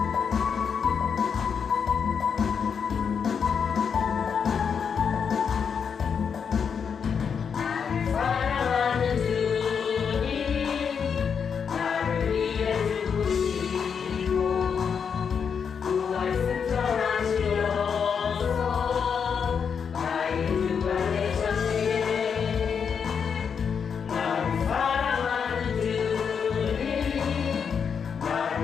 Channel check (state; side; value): quieter; right; 6.7 dB